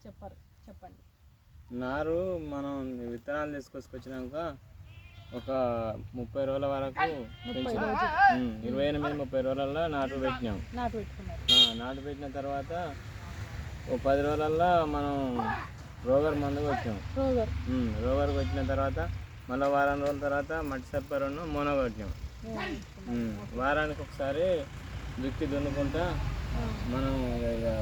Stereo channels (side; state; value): both; identical; correlation 1.00